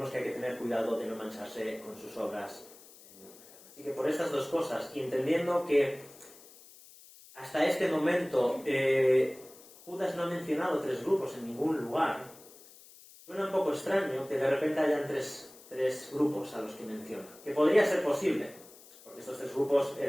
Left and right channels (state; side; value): noise; left; hiss, 22 dB below the sound